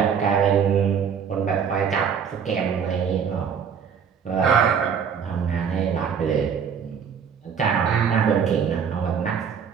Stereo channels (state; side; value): quieter; left; 7.1 dB